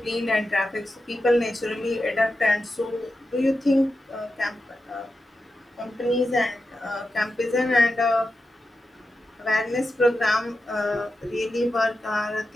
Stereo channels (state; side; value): normal; both; correlation 0.90